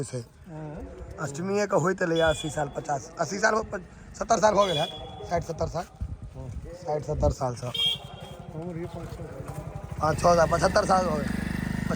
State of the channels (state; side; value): identical; both; correlation 1.00